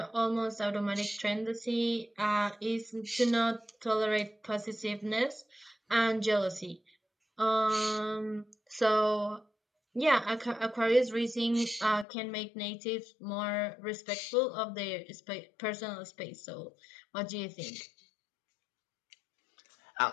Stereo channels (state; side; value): drops out; right; at 12.1 s